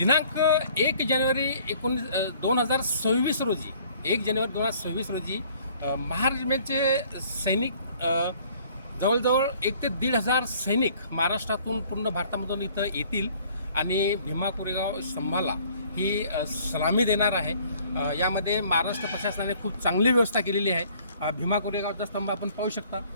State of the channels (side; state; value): both; inverted; correlation -0.56